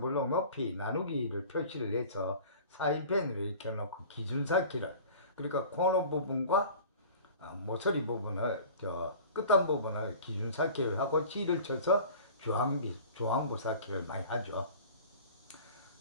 높이 나누기를 표시를 해서 사인펜으로 이렇게 놓고 기준사키를, 그러니까 코너 부분과 모서리 부분을, 끝단 부분을 기준사키를 하고 실을 쳐서 주황부 사키를 많이 하죠.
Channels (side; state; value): both; inverted; correlation -0.42